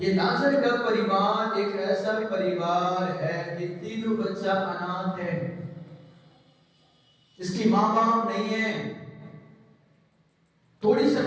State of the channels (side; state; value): both; identical; correlation 1.00